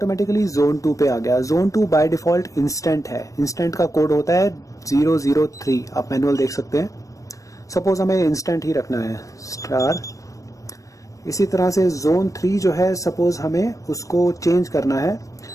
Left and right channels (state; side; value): late; right; 0.16 ms